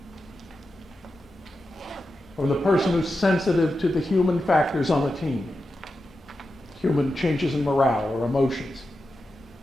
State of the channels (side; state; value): both; normal; correlation 0.90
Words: from the person who's sensitive to the human factors on the team, human changes in morale or emotions.